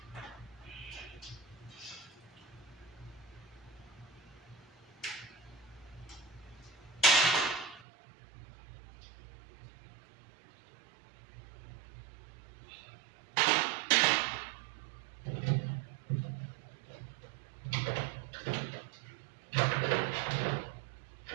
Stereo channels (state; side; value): drops out; left; at 7.9 s